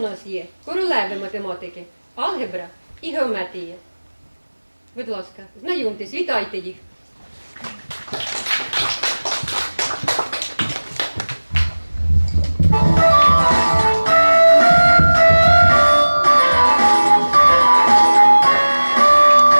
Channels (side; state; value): both; inverted; correlation -1.00